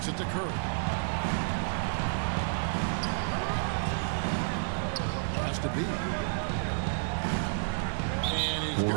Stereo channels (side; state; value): left; silent; 57 dB below the other